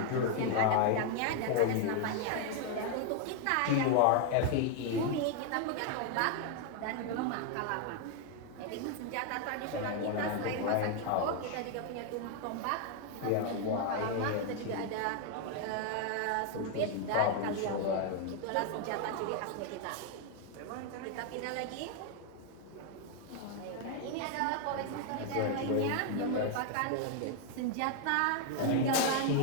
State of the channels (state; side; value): different; both; correlation 0.00